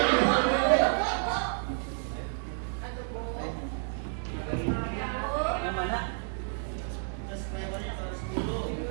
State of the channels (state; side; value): silent; left; 57 dB below the other